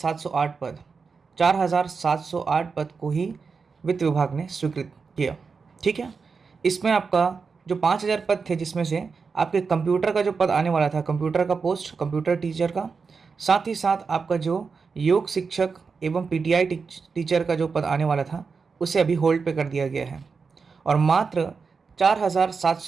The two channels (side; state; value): left; quieter; 5.1 dB